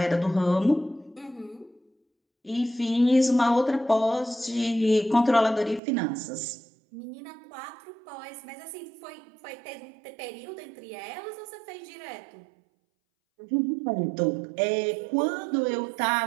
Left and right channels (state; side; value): drops out; left; at 5.8 s